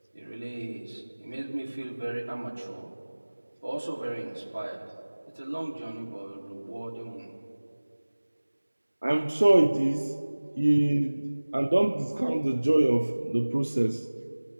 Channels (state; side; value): inverted; both; correlation -1.00